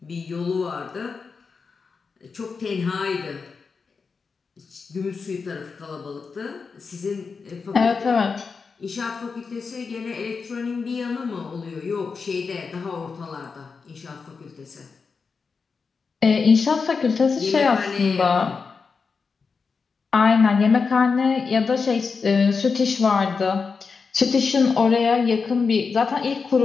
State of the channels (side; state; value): right; quieter; 5.0 dB